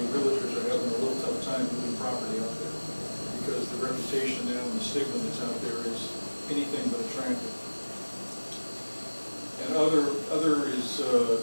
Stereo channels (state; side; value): inverted; both; correlation -1.00